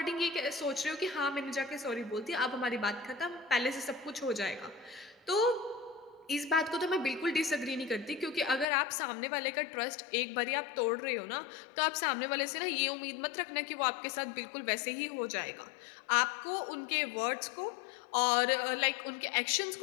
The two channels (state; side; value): drops out; right; at 8.7 s